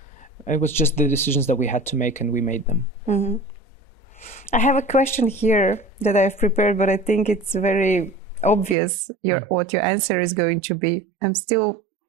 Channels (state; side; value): drops out; left; at 8.8 s